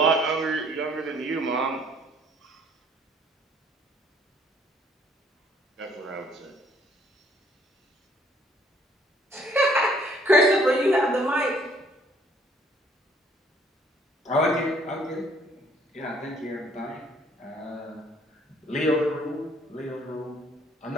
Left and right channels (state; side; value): normal; both; correlation 0.61